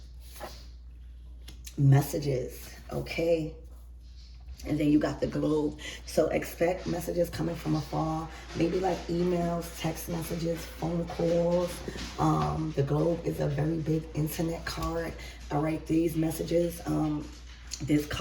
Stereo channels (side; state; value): both; identical; correlation 1.00